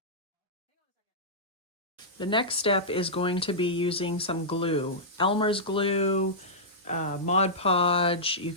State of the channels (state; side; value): normal; both; correlation -0.13